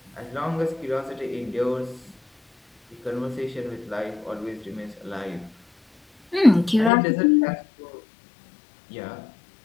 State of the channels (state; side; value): drops out; right; at 6.9 s